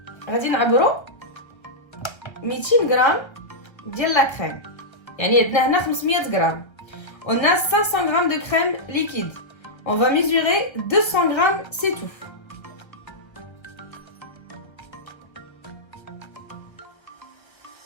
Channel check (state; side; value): late; right; 1.3 ms